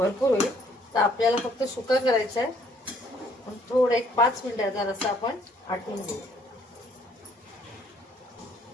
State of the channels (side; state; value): both; normal; correlation 0.63